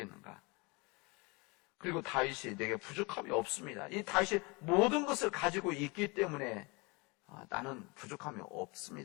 그리고 다윗이 내게 부족함이 없습니다. 이 다윗이 모든 것을 가지고 있기 때문에 나는 부족함이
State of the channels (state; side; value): quieter; right; 27.9 dB